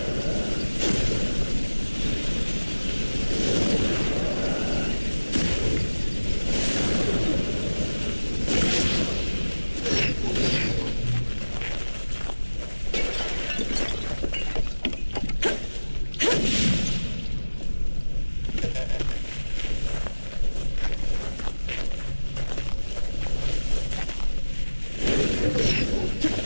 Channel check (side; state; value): both; inverted; correlation -1.00